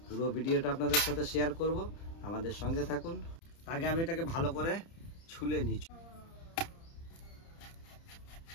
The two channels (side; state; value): right; late; 30 ms